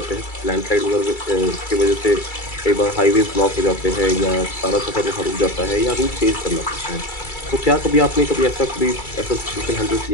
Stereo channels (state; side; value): late; right; 2.3 ms